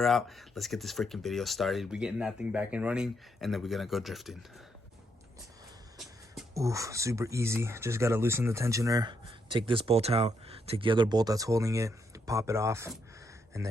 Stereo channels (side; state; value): both; normal; correlation 0.77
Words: out. Let's get this freaking video started. We're getting that thing back and running, and then we're going to go drifting. Oof, super easy. Just got to loosen the tensioner, take this bolt out, take the other bolt that's holding it, pop it off, and